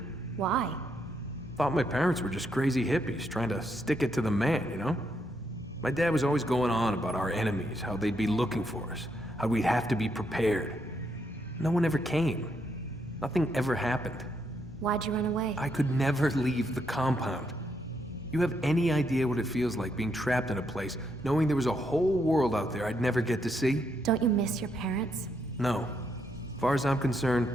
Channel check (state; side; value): normal; both; correlation 0.77